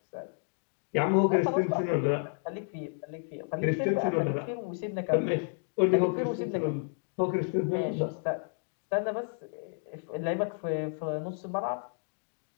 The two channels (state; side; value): silent; right; digital silence